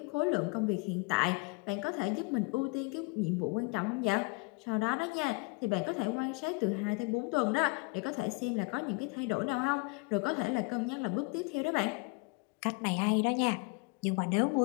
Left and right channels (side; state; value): right; quieter; 30.3 dB